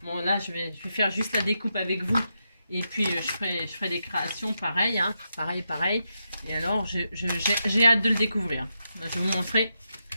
Bon, là, je vais faire juste la découpe avec vous. Et puis, je ferai des créations pareil. Hein, pareil. Et alors, j'ai hâte de le découvrir. Je vais vous montrer.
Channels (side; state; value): both; inverted; correlation -0.85